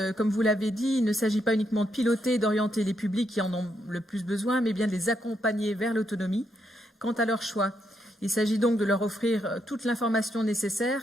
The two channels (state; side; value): normal; both; correlation 0.79